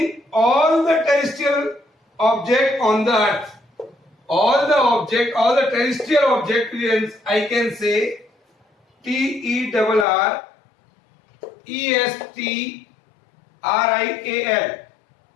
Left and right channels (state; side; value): drops out; right; at 10.1 s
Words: all the terrestrial objects on the earth. All the terrestrial objects, I can say TERRESTRIAL.